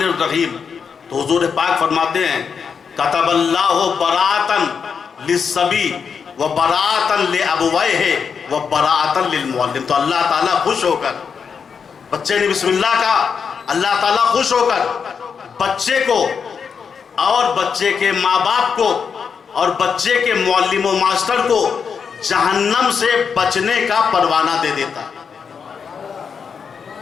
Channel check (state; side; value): quieter; right; 6.3 dB